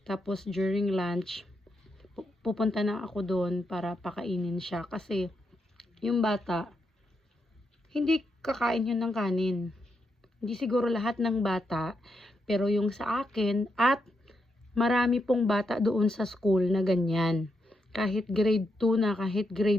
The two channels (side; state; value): both; normal; correlation 0.82